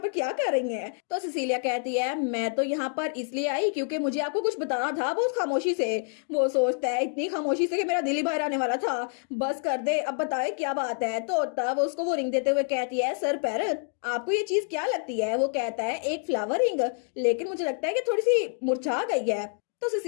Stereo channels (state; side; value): silent; right; 56 dB below the other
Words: क्या कर रही हैं? तो सिसिलिया कहती है मैं तो यहाँ पर इसलिए आई क्योंकि मुझे आपको कुछ बताना था बहुत खामोशी से। वो सोचता है इतनी खामोशी से कि मेरा दिल ही बाहर आने वाला था, बस कर दे अब बताए क्या बात है। तो तब उसको वो रिंग देते हुए कहती है सर पैरल आपको ये चीज क्या लगती है? वो कहता है एक फ्लावर रिंग, लेकिन मुझे लगता है कि थोड़ी सी मुरझा गई है। तो